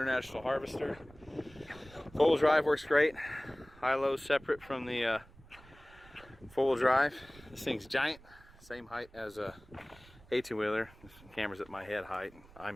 Harvester. Four-wheel drive works great. High-low separate from the four-wheel drive. This thing's giant, same height as a 18-wheeler. This camera's at my head height.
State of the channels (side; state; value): right; noise; rumble, 23 dB below the sound